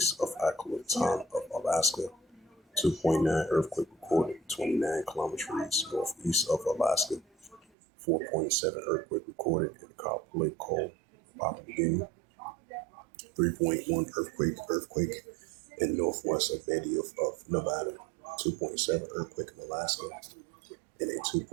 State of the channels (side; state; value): left; drops out; at 7.7 s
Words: of Acolatan of Alaska. 2.9 earthquake recorded 29 kilometers northeast of Alaska. 4.7 earthquake recorded in Kapolei, Papua New Guinea. 3.1 earthquake in northwest of Betty of Nevada. 2.7 earthquake in Alaska, and a